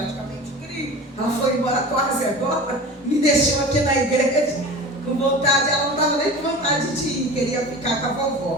crio. Ela foi embora quase agora, me deixou aqui na igreja com vontade. Ela não estava nem com vontade de ir, queria ficar com a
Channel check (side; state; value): both; normal; correlation 0.35